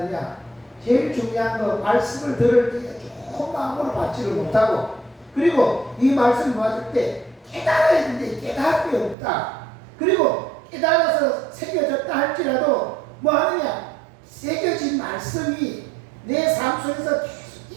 제일 중요한 거 말씀을 들을 때 좋은 마음으로 받지를 못하고, 그리고 이 말씀을 받을 때 깨달아야 되는데 깨달음이 없다. 그리고 깨달아서 새겨졌다 할지라도 뭐 하느냐? 새겨진 말씀이 내 삶 속에서 계속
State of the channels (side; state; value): left; drops out; at 9.2 s